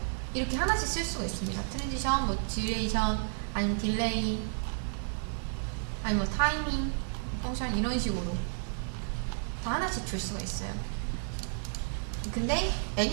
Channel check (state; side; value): silent; left; digital silence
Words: 이렇게 하나씩 쓸 수가 있습니다. 트랜지션, 뭐 듀레이션, 아니면 딜레이, 아니면 뭐 타이밍, 펑션 이런 식으로 다 하나씩 줄 수가 있어요. 근데